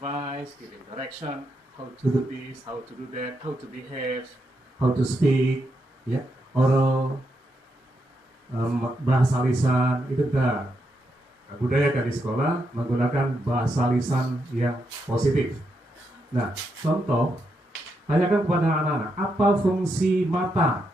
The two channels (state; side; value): normal; both; correlation 0.82